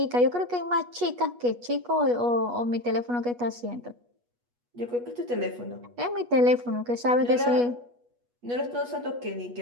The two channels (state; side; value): late; left; 8.3 ms